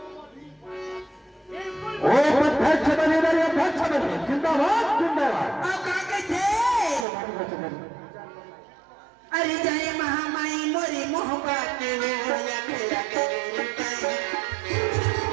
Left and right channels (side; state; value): left; drops out; at 7.1 s